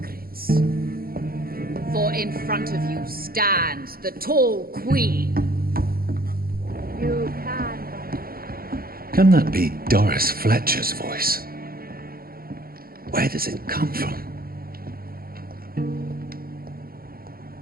For in front of you stands the tall queen. You can. Can that be Doris Fletcher's voice? Where does it come from?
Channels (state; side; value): late; left; 0.43 ms